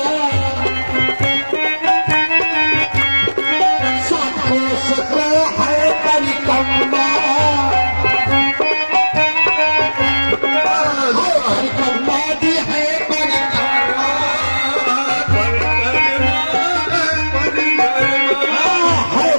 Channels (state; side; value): inverted; both; correlation -1.00